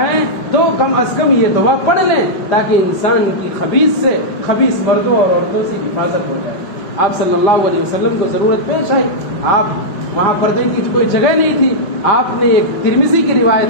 تو کم از کم یہ دعا پڑھ لیں، تاکہ انسان کی خبیث سے، خبیث مردوں اور عورتوں سے حفاظت ہو جائے۔ آپ صلی اللہ علیہ وسلم کو ضرورت پیش آئی، آپ وہاں پردے کی کوئی جگہ نہیں تھی، آپ نے ایک ترمذی کی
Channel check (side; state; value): right; late; 5.1 ms